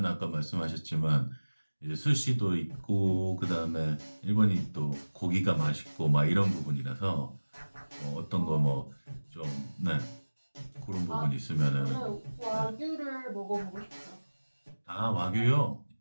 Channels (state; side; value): inverted; both; correlation -1.00